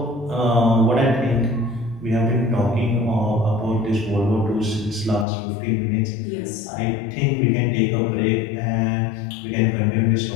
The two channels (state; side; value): drops out; right; at 5.2 s